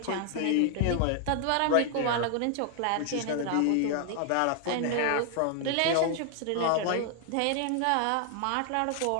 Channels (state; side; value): different; both; correlation 0.00